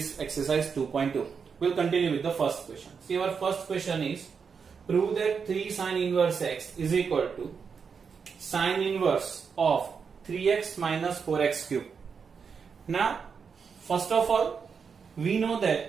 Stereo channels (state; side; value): quieter; left; 6.0 dB